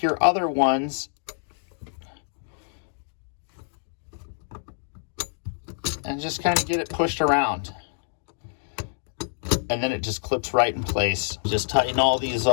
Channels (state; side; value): silent; right; digital silence